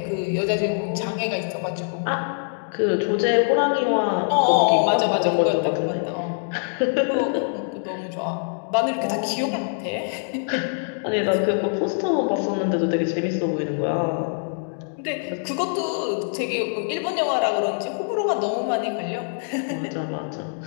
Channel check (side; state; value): right; silent; digital silence